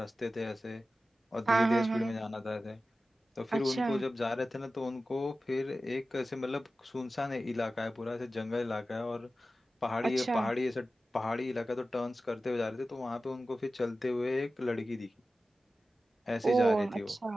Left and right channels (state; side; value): normal; both; correlation 0.94